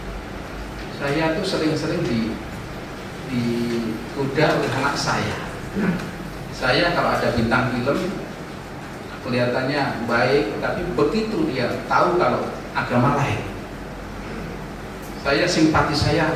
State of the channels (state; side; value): identical; both; correlation 1.00